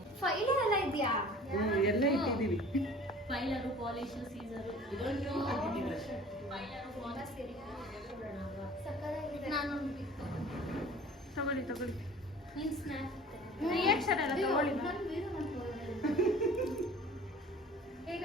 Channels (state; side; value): normal; both; correlation 0.46